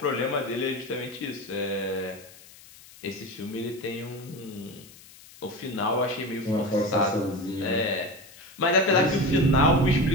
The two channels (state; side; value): noise; left; hiss, 21 dB below the sound